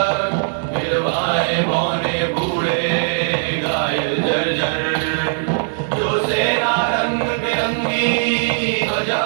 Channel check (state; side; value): silent; left; digital silence